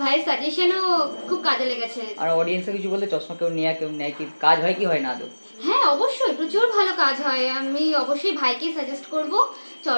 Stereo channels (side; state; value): both; inverted; correlation -1.00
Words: সাজেশনও খুব কাজে লেগেছে। আর অডিয়েন্সে কিছু বলতে, চশমা কেউ নেয় কি কাজ হয় কি হয় না আদৌ? হ্যাঁ অবশ্যই প্রচুর ভালো কাজ হয়। আমি অবশ্যই ভাইকে সাজেস্ট করব